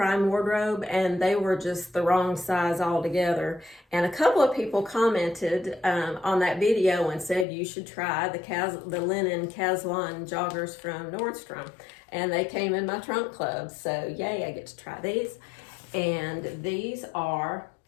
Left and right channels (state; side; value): drops out; right; at 7.5 s